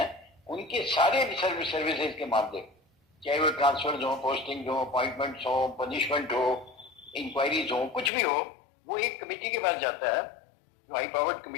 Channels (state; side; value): drops out; right; at 8.1 s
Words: उनके सारे सर्विसेज के मामले, चाहे वो ट्रांसफर हो, पोस्टिंग हो, अपॉइंटमेंट हो, पनिशमेंट हो, इंक्वायरीज हो, कुछ भी हो, वो एक कमेटी के पास जाता है जो हाई पावर्ड